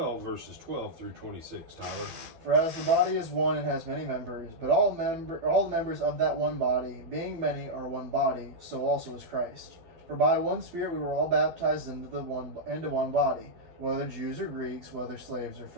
verses 12 through 26, Tyler. For as the body is one and has many members, but all the members of that one body, being many, are one body, so also is Christ. For by one Spirit we were all baptized into one body, whether Jews or Greeks, whether slaves or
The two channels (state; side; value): late; left; 12 ms